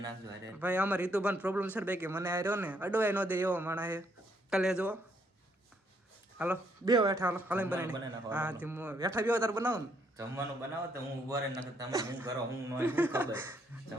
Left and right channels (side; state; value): both; normal; correlation 0.71